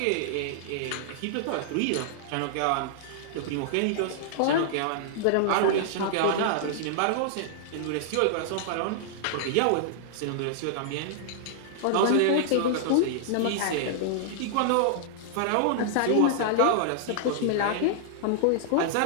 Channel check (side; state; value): both; different; correlation -0.01